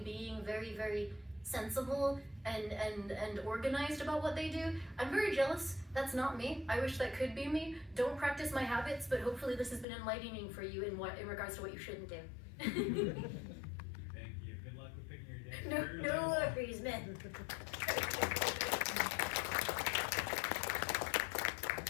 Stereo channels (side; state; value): right; drops out; at 9.9 s